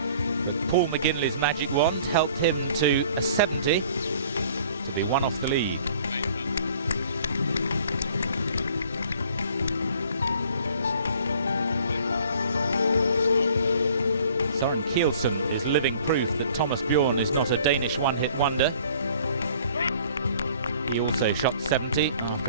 but Paul McGinley's magic wand helped him to a 70 to be one off the lead. Søren Kielsen is living proof that Thomas Bjorn is not a Danish one-hit wonder. He also shot 70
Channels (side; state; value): both; inverted; correlation -0.54